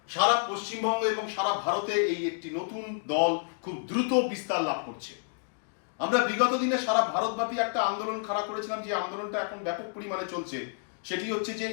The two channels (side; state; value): right; silent; digital silence